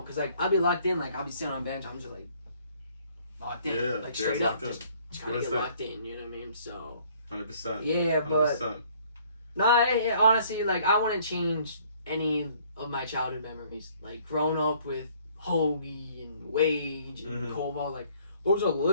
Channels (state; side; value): inverted; both; correlation -0.60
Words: because, like, I'll be locked in, like, I'll be sitting on a bench, I'm just, like, locked in, like, straight up, just trying to get locked in, you know what I mean? So, 100%. Yeah, but, 100%. Honestly, like, I wouldn't change any of my childhood memories, like, growing up with Hoagie and Wage and Koval, like, those are